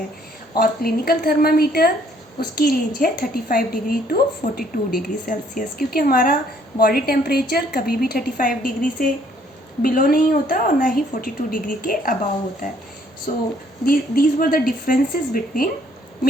और क्लिनिकल थर्मामीटर उसकी रेंज है 35 डिग्री टू 42 डिग्री सेल्सियस, क्योंकि हमारा बॉडी टेम्परेचर कभी भी 35 डिग्री से बिलो नहीं होता और ना ही 42 डिग्री के अबाव होता है. So these were the differences between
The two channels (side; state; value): both; normal; correlation 0.64